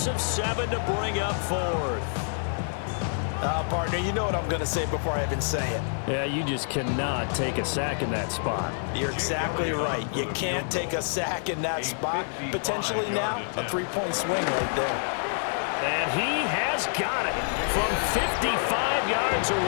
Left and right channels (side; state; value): right; silent; digital silence